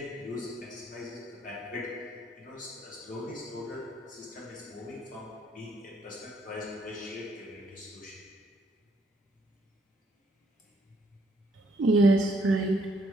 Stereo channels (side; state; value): both; normal; correlation 0.70